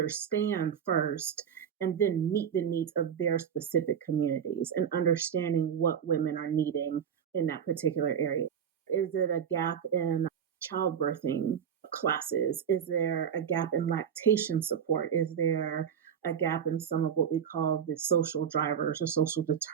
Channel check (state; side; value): quieter; left; 8.3 dB